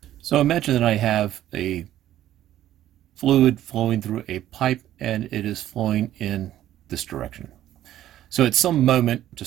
So imagine that I have a fluid flowing through a pipe and it is flowing in this direction. So at some moment,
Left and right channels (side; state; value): left; quieter; 12.7 dB